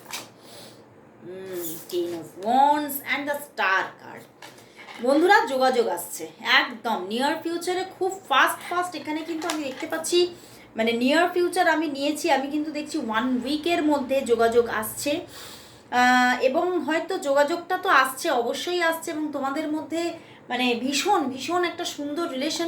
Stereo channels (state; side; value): identical; both; correlation 1.00